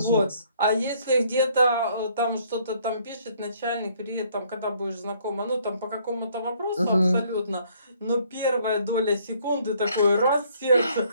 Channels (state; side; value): inverted; both; correlation -0.64